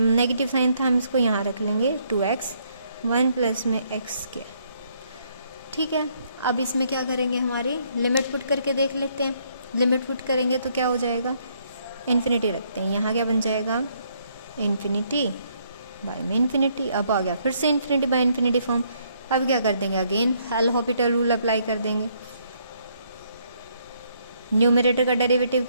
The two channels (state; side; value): inverted; both; correlation -0.70